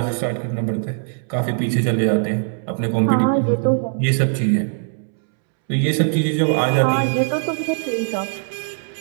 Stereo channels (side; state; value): left; silent; 65 dB below the other